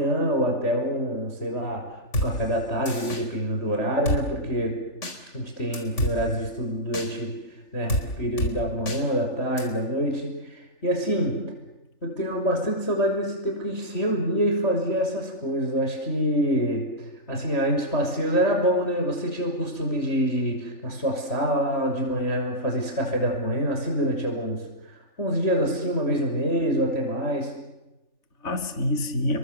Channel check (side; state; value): right; late; 3.4 ms